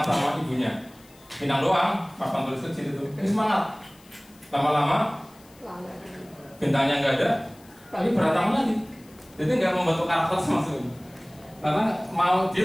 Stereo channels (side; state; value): left; noise; hiss, 27 dB below the sound